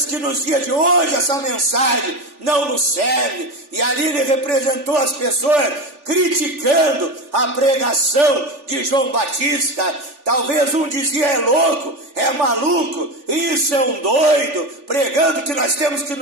que nos dias de hoje essa mensagem não nos serve. E ali ele representou as pessoas criticando a pregação de João Batista. Talvez um dizia: é louco, é maluco, isso é um doido, pregando que nós temos que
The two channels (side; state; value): left; late; 3.4 ms